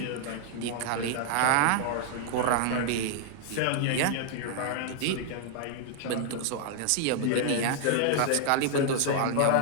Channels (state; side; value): different; both; correlation 0.00